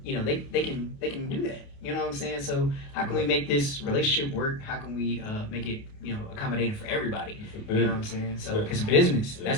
you know, they can do that. You know what I'm saying? So how can we make this relationship work? How can we make it, you know, accommodating for everybody? It's a You know what I'm business. saying? So Yeah. it's a business. Yeah.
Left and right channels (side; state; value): right; late; 28 ms